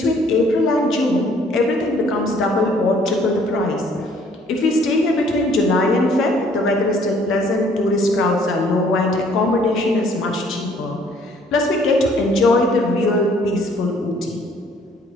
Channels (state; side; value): normal; both; correlation 0.60